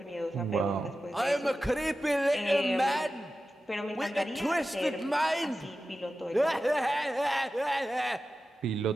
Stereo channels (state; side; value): normal; both; correlation 0.93